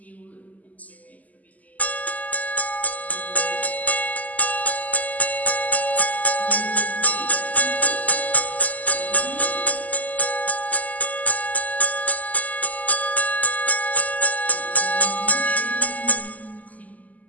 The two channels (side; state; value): right; late; 0.077 ms